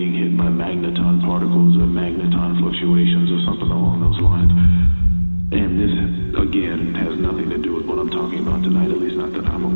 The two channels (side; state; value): both; inverted; correlation -1.00